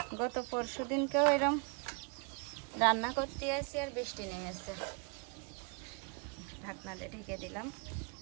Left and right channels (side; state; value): left; quieter; 36.3 dB